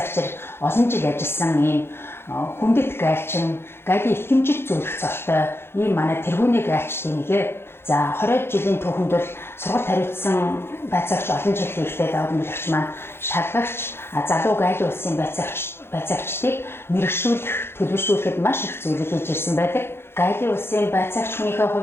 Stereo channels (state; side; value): late; right; 0.11 ms